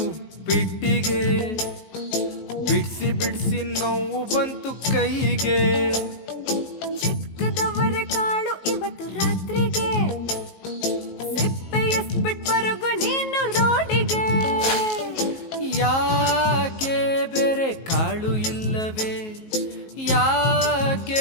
ಉಪ್ಪಿಟ್ಟಿಗೆ, ಬಿಡ್ಸಿ ಬಿಡ್ಸಿ ನೋವು ಬಂತು ಕೈಗೆ. ಚಿಕ್ಕದವರ ಕಾಳು ಇವತ್ತು ರಾತ್ರಿಗೆ, ಸಿಪ್ಪೆ ಎಸ್ಬಿಟ್ ಬರಗು ನೀನು ರೋಡಿಗೆ. ಯಾಕೆ ಬೇರೆ ಕಾಳು ಇಲ್ಲವೇ,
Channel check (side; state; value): right; late; 19 ms